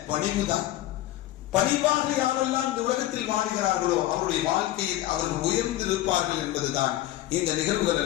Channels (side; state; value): right; quieter; 14.8 dB